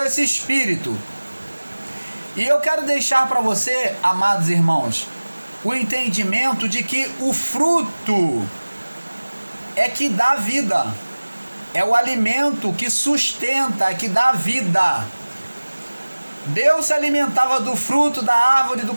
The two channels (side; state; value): both; inverted; correlation -1.00